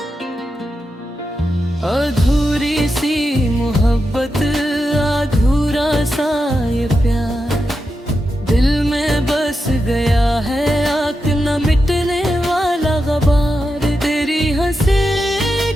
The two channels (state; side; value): normal; both; correlation 0.88